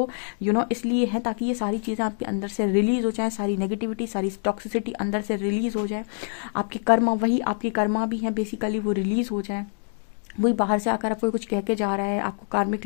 इसलिए हैं ताकि ये सारी चीज़ें आपके अंदर से रिलीज हो जाए, सारी नेगेटिविटी, सारी टॉक्सिसिटी अंदर से रिलीज हो जाए, आपके कर्मा, वही आपके कर्मा भी हैं बेसिकली, वो रिलीज हो जाए। वही बाहर से आकर आपको कुछ कह के जा रहा है, आपको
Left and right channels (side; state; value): right; silent; 58 dB below the other